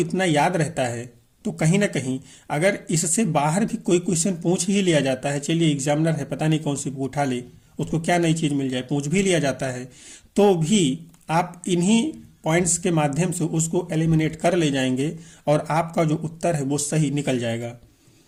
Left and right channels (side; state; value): both; identical; correlation 1.00